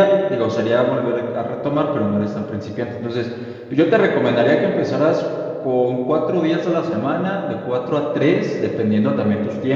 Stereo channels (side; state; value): both; identical; correlation 1.00